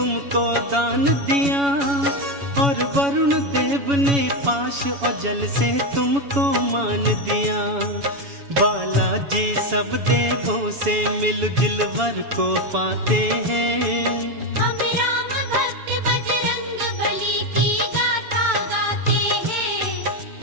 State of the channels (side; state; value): left; late; 7.1 ms